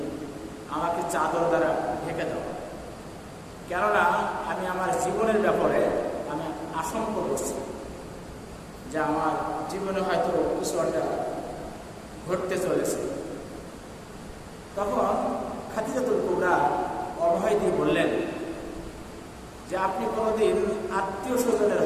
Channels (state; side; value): identical; both; correlation 1.00